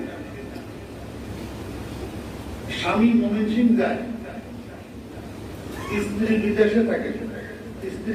স্বামী ময়মনসিংহ যায়, স্ত্রী বিদেশে থাকে,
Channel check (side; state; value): both; identical; correlation 1.00